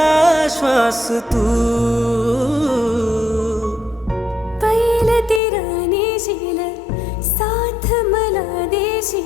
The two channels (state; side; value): drops out; right; at 5.4 s